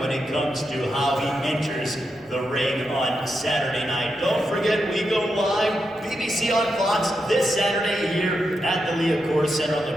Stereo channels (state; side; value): normal; both; correlation 0.85